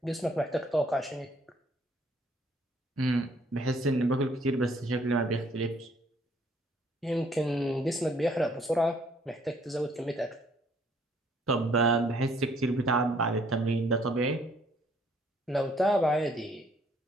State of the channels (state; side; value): normal; both; correlation 0.63